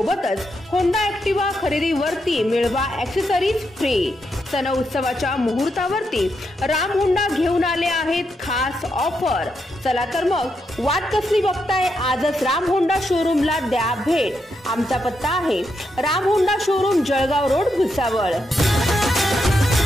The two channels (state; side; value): normal; both; correlation 0.82